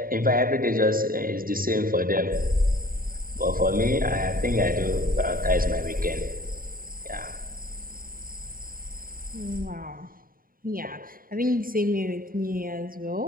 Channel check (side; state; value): left; late; 0.41 ms